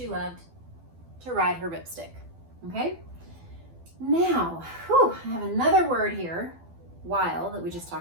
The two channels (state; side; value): late; left; 12 ms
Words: loved to ride her ripstick. Okay? Now, I have another word here while that we just